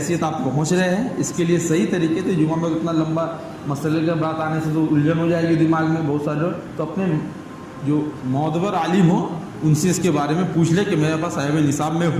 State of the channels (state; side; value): identical; both; correlation 1.00